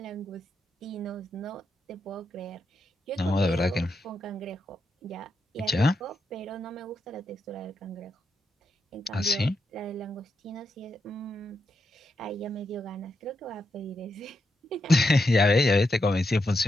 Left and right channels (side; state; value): both; normal; correlation 0.84